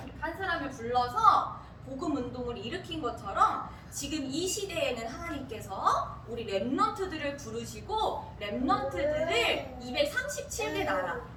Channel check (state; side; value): identical; both; correlation 1.00